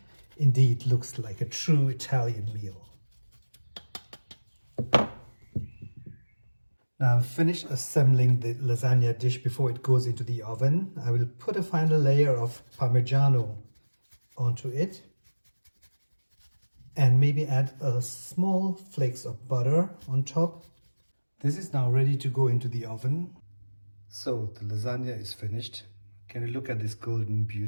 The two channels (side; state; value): both; inverted; correlation -1.00